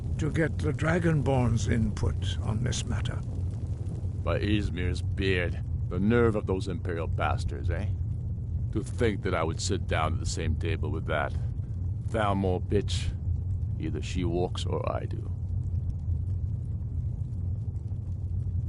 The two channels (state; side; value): identical; both; correlation 1.00